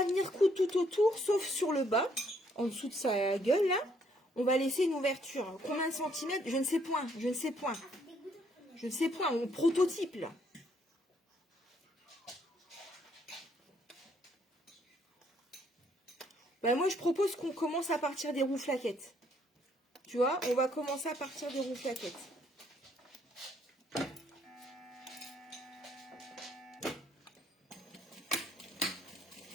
venir coudre tout autour, sauf sur le bas, en dessous de sa gueule, là. On va laisser une ouverture. Combien de centimètres? Je ne sais point, je ne sais point. Je ne sais point, on prototype, là. Ben moi, je propose qu'on commence à partir des rouflaquettes. Tu vois, on va commencer à partir des rouflaquettes.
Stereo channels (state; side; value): normal; both; correlation 0.68